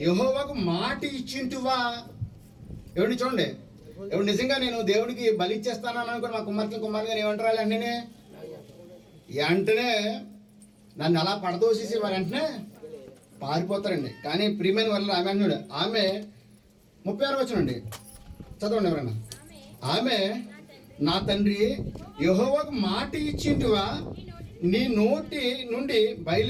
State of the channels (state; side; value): identical; both; correlation 1.00